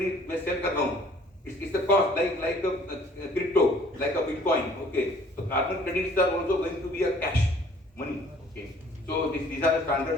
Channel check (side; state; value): both; normal; correlation 0.56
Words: मैं sell कर रहा हूँ. It's the cost like a crypto, like a Bitcoin. Okay, so carbon credits are also going to be a cash money. Okay, so these are the